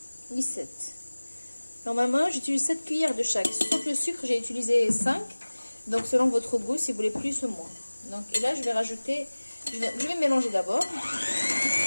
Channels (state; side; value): inverted; both; correlation -1.00